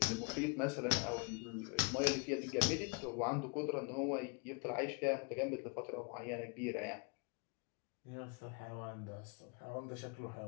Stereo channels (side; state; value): right; quieter; 34.8 dB